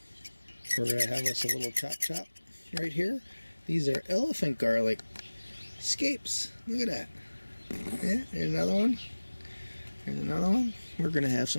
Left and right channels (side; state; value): both; inverted; correlation -1.00